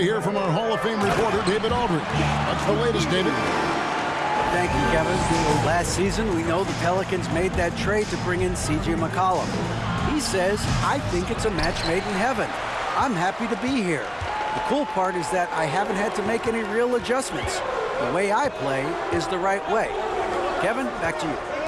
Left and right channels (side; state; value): both; identical; correlation 1.00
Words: hear from our Hall of Fame reporter, David Aldridge. What's the latest, David? Thank you, Kevin. Last season, we know the Pelicans made that trade to bring in C.J. McCollum. He says, I think it's a match made in heaven. I'm happy to be here. The cool part is that I haven't had to make any real adjustments. The way I play is the right way. Kevin, back to you.